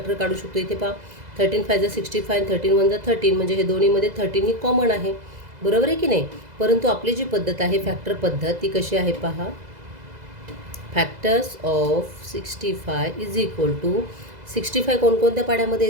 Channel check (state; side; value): late; left; 2.0 ms